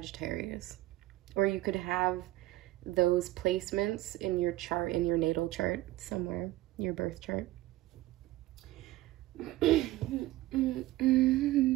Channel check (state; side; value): quieter; left; 16.7 dB